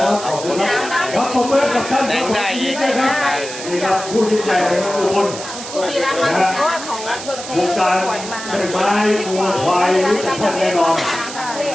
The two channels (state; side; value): noise; right; hiss, 10 dB below the sound